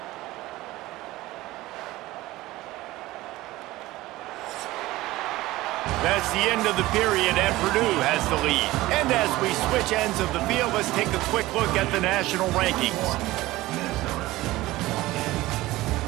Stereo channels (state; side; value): quieter; left; 18.0 dB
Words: That's the end of the period, and Purdue has the lead. And as we switch ends of the field, let's take a quick look at the national rankings.